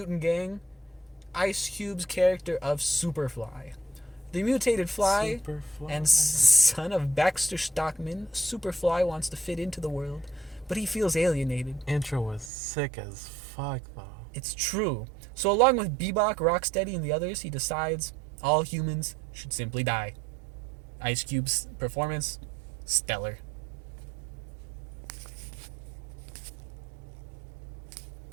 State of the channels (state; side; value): drops out; left; at 12.5 s